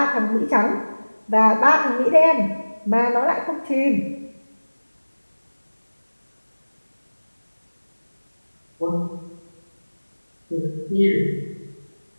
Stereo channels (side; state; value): both; inverted; correlation -1.00